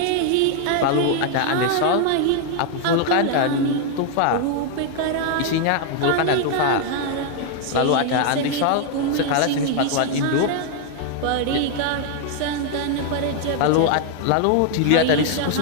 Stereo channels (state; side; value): different; both; correlation 0.00